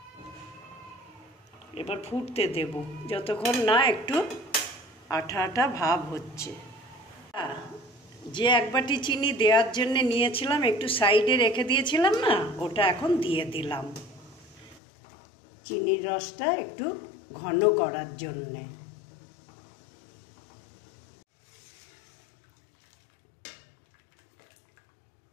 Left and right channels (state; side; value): drops out; right; at 14.8 s